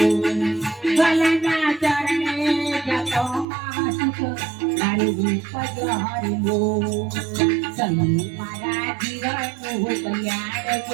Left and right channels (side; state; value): left; drops out; at 3.5 s